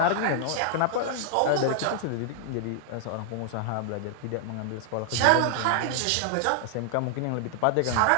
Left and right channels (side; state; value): both; different; correlation -0.01